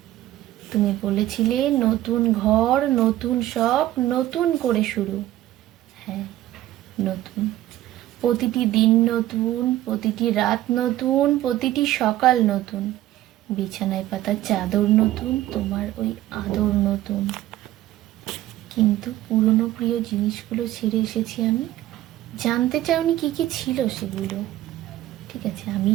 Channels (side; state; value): left; quieter; 14.6 dB